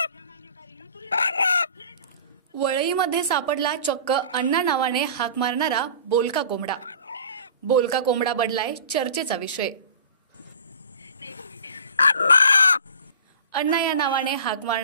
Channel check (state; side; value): inverted; both; correlation -0.42